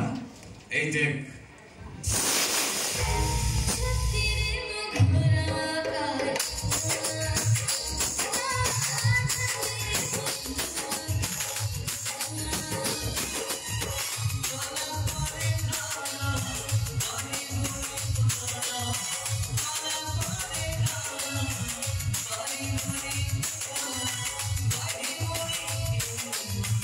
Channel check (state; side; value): identical; both; correlation 1.00